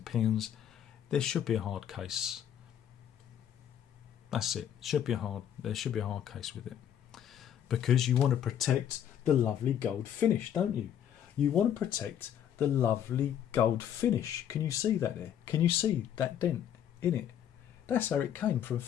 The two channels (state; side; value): quieter; right; 9.8 dB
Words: there should be a hard case. That's it. There should be a hard case with it. Because you want to protect the lovely gold finish, don't you? You want to protect the lovely gold finish. Can you see that there? Can you see that dent in it? That's how it came from